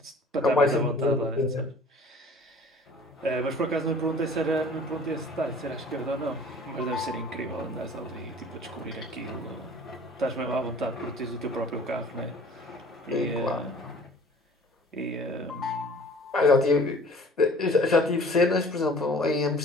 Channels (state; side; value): normal; both; correlation 0.49